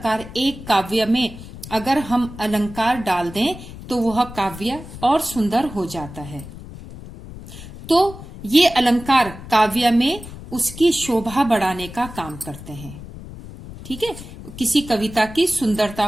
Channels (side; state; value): left; noise; rumble, 14 dB below the sound